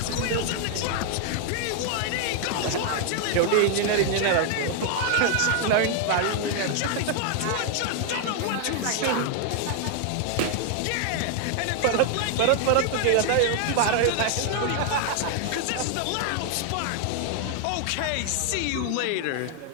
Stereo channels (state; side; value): different; both; correlation 0.00